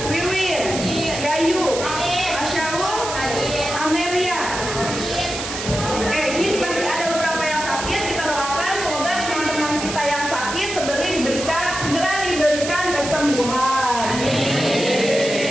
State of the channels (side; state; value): right; noise; hiss, 6 dB below the sound